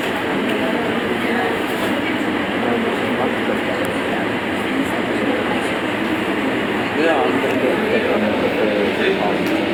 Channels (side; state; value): both; identical; correlation 1.00